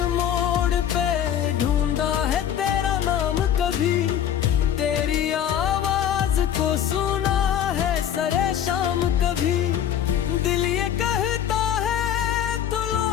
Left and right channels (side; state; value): right; quieter; 10.0 dB